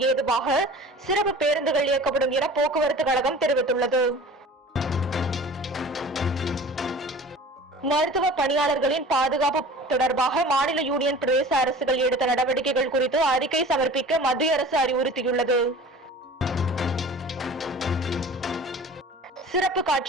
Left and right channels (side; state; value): both; normal; correlation 0.41